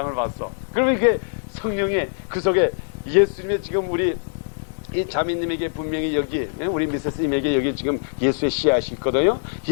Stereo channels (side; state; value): right; silent; digital silence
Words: 봤어. 그러면 이게 성령의 그 속에 예수님의 지금 우리 이 자매님에게 분명히 여기 우리 미세스님에게 여기 지금 예수의 씨앗이 있거든요.